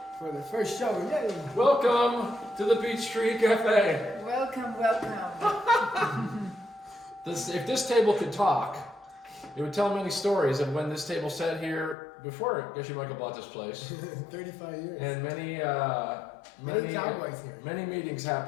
For the first show, yay! Welcome to the Peachtree Cafe. Welcome, welcome. If this table could talk, it would tell many stories of when this table sat here before Geshe Michael bought this place. 35 years. And many cowboys here. Many meetings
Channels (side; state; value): right; drops out; at 12.0 s